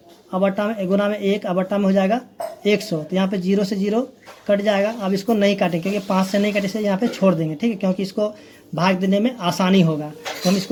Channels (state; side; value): identical; both; correlation 1.00